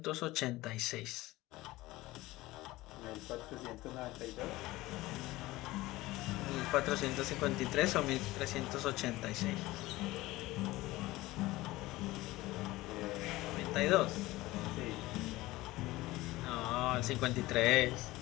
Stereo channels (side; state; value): right; quieter; 18.7 dB